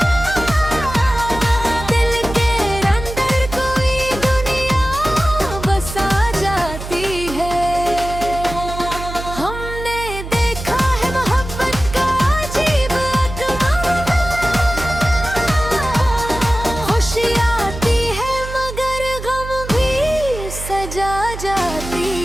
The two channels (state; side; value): noise; right; hum, 9 dB below the sound